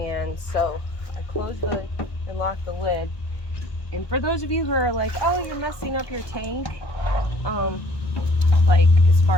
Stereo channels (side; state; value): right; late; 1.2 ms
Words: so I close the and lock the lid. And for those of you who are like, oh, you're messing up your tank, like as